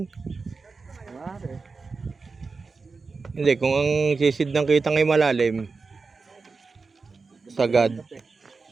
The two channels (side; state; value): left; quieter; 4.4 dB